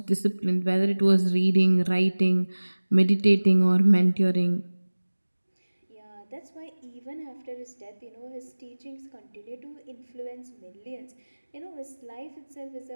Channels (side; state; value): both; inverted; correlation -1.00